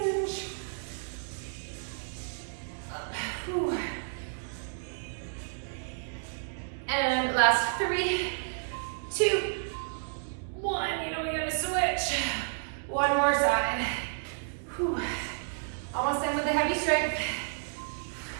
last 3, 2, 1. You know we gotta switch. One more side. Whew. Almost done with the heavy strength.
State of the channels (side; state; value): left; silent; digital silence